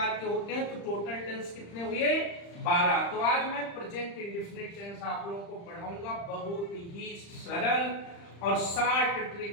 के होते हैं। तो टोटल टेंस कितने हुए? 12। तो आज मैं प्रेजेंट इंडेफिनिट टेंस आप लोगों को पढ़ाऊंगा। बहुत ही सरल और शॉर्ट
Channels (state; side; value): late; right; 35 ms